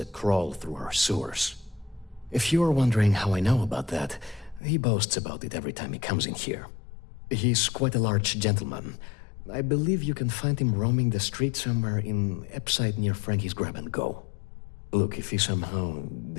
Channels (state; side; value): drops out; right; at 4.6 s